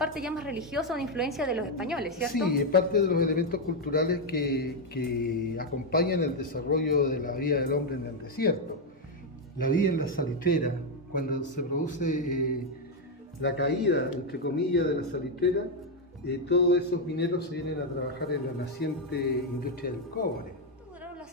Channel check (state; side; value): normal; both; correlation 0.03